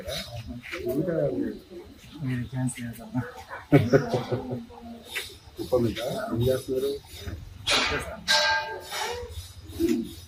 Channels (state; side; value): identical; both; correlation 1.00